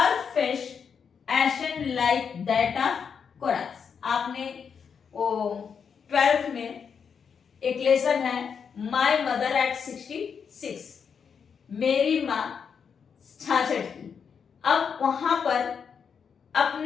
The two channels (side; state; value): right; quieter; 6.6 dB